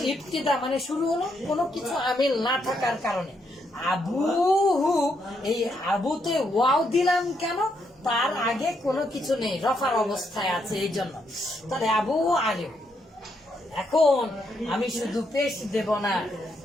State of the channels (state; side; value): normal; both; correlation 0.77